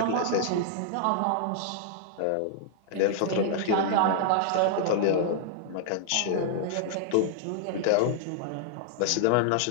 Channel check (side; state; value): both; different; correlation -0.01